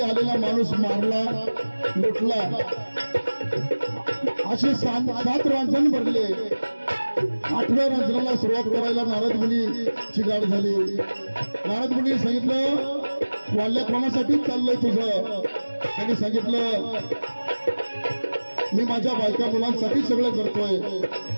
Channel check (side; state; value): both; inverted; correlation -1.00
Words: आलेला माणूस मारला लुटला. असे 7 रांजण भरले. 8व्या रांजणाला सुरुवात करायला नारद मुनीची गाठ झाली. नारद मुनी सांगितलं वाल्या कोणासाठी चाललंय तुझं. त्यांनी सांगितलं मी माझ्या बायका मुलांसाठी सगळं करतोय.